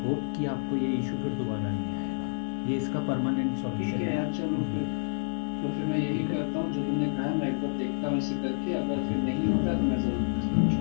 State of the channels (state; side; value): silent; right; digital silence